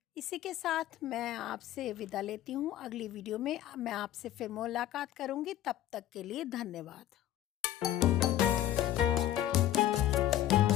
इसी के साथ मैं आपसे विदा लेती हूँ। अगली वीडियो में मैं आपसे फिर मुलाकात करूँगी। तब तक के लिए धन्यवाद।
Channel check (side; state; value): right; quieter; 12.6 dB